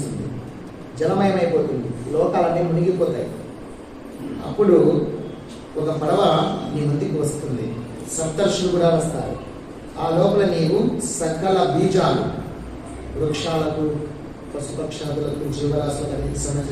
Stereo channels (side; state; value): both; identical; correlation 1.00